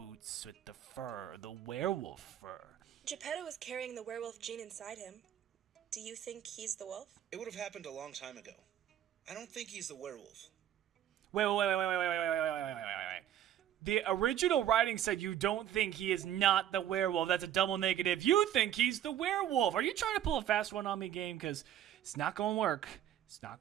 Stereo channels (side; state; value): left; quieter; 11.1 dB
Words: with the fur, the werewolf fur. Geppetto is carrying the werewolf gene inside him. Do you think he's the wolf? It would have happened a long time ago. I don't think he's the werewolf. Wait. The original writing said you don't think he is not the werewolf. That's a double negative. You think he's the werewolf. Are you trying to pull a fast one on me, game? Because it's not going to work. It's not